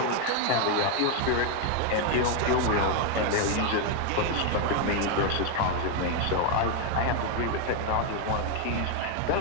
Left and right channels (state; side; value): different; both; correlation 0.01